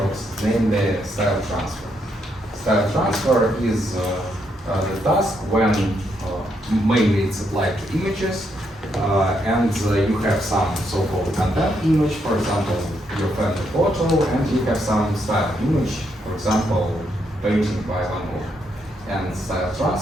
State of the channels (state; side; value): normal; both; correlation 0.77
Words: namely style transfer. Style transfer is the task when mainly it's applied to images and you have some so-called content image, for example, your family photo, and you have some style image, for example, painting by Van Gogh. And style